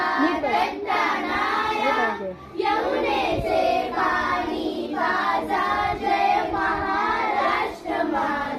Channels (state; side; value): identical; both; correlation 1.00